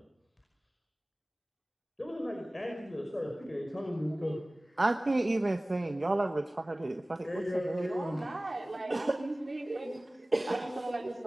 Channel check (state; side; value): normal; both; correlation 0.98